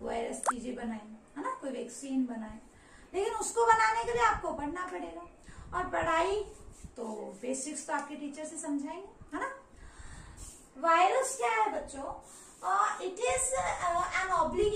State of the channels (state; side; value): identical; both; correlation 1.00